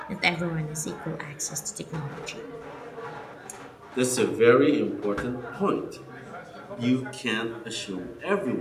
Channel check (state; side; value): identical; both; correlation 1.00